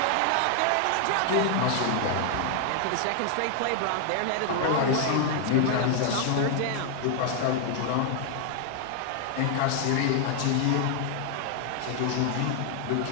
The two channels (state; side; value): different; both; correlation 0.00